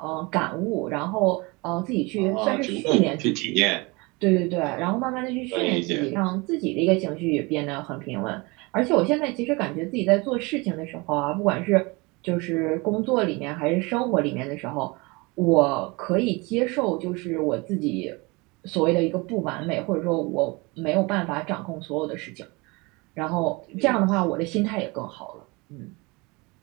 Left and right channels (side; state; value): left; quieter; 26.0 dB